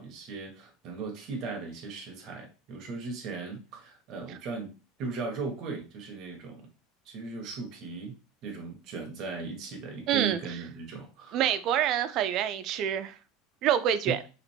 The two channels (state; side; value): quieter; left; 7.9 dB